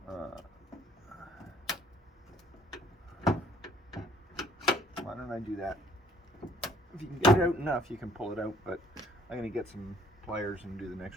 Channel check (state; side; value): normal; both; correlation 0.60